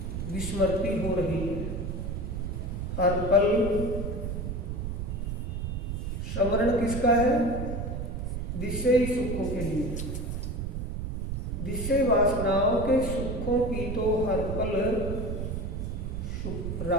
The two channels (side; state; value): right; noise; rumble, 3 dB below the sound